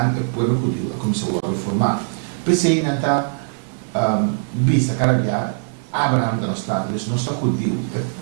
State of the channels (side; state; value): left; silent; digital silence